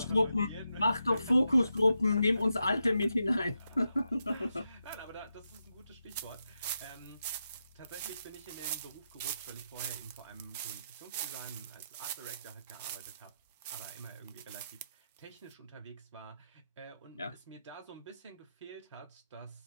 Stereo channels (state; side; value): inverted; both; correlation -0.86